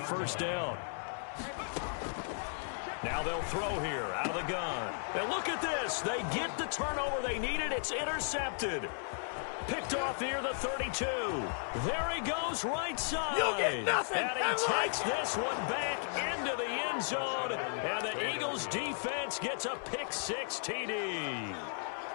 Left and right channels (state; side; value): silent; right; digital silence